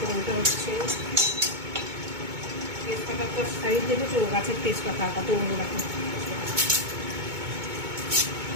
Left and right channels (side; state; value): left; late; 2.2 ms